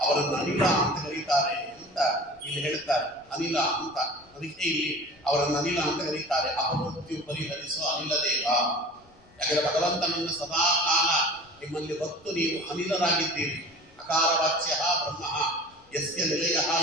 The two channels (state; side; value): noise; left; rumble, 29 dB below the sound